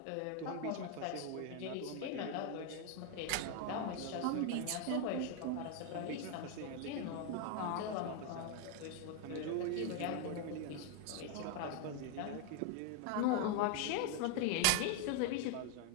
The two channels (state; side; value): different; both; correlation 0.01